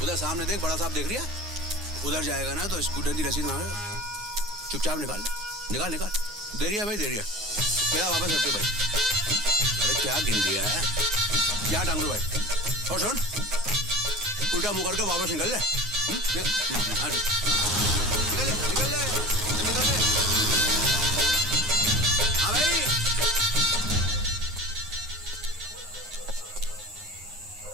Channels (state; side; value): normal; both; correlation 0.36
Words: उधर सामने देख, बड़ा साहब देख रही है। उधर जाएगा ना तो स्कूटर की रसीद मांगे, चुपचाप निकाल। दे रही है भाई, दे रही है। मेरा वापस रख दे भाई। अरे क्या गिन दिया है, क्या टांग दो भाई। और सुन, उल्टा मुंह करके वापस निकल ले। निकल ले। हाँ भाई।